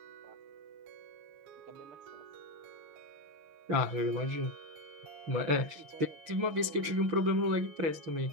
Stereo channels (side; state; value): left; late; 6.5 ms